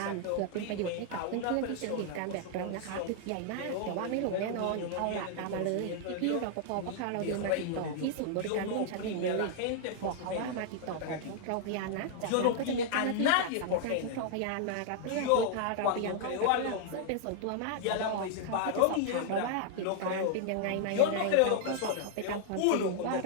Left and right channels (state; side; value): different; both; correlation -0.01